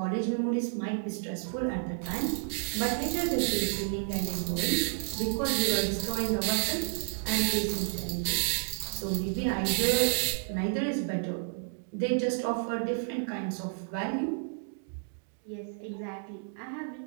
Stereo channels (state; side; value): silent; left; digital silence